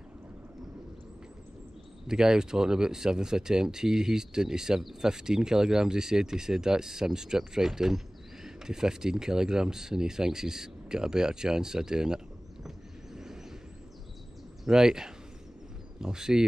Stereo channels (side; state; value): both; normal; correlation 0.98